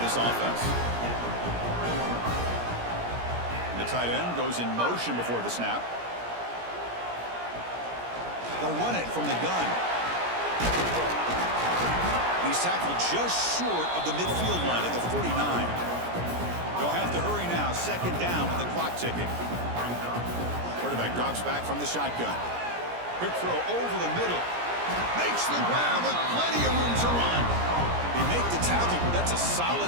this offense. The tight end goes in motion before the snap. They'll run it from the gun. He's tackled just short of the midfield line at the 49. They'll have to hurry now. Second down with the clock ticking. Quarterback drops back from the shotgun. Quick throw over the middle. Makes the grab with plenty of room to run. They make the tackle, but that's a solid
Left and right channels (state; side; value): late; left; 17 ms